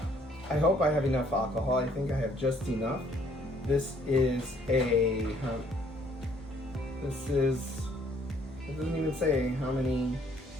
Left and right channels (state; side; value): normal; both; correlation 0.63